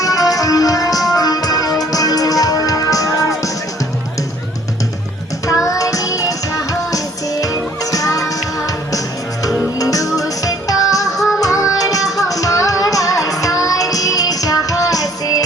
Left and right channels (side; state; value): both; normal; correlation 0.58